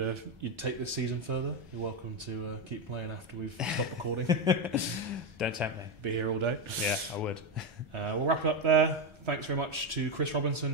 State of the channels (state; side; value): late; left; 1.3 ms